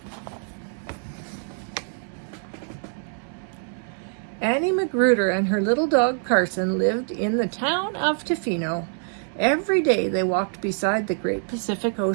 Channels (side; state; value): left; silent; 56 dB below the other